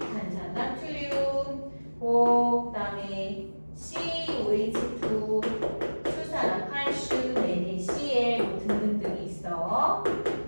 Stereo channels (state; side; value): inverted; both; correlation -1.00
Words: 나트륨, 그 다음에 COH2 수산화 칼슘, NaCl 뭐 등등등이 있어.